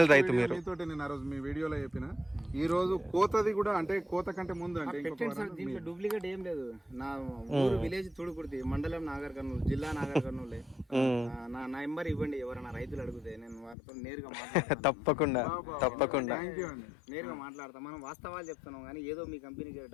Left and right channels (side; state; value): right; drops out; at 13.8 s